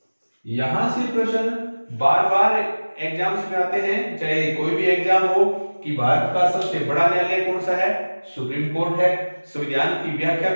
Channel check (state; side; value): inverted; both; correlation -1.00